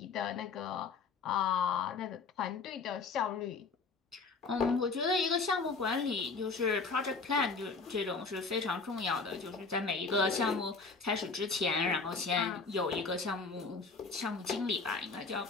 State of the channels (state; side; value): quieter; right; 4.5 dB